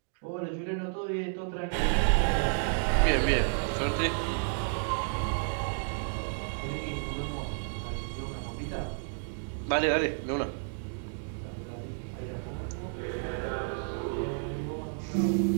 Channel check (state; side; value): silent; left; 57 dB below the other